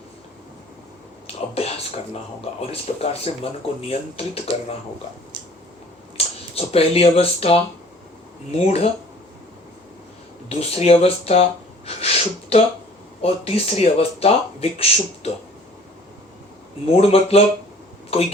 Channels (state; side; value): normal; both; correlation 0.51